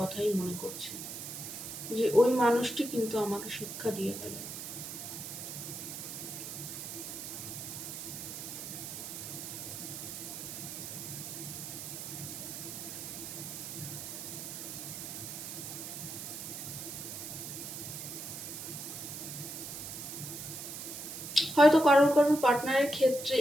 মনে করছে যে ওই মানুষটি কিন্তু আমাকে শিক্ষা দিয়ে গেল। হয়তো কারোর পার্টনারের ক্ষেত্রে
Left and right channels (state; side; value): noise; right; hiss, 8 dB below the sound